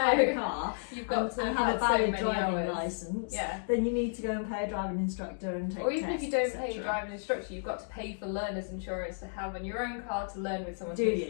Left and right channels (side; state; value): right; silent; digital silence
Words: a car You've got to and have a so valid many driving hours. licence, Yeah. then you need to go and pay a driving instructor and take Or even if you tests, don't pay a etc. driving instructor, you've got to pay for learner's insurance to have on your own car to learn with someone. Do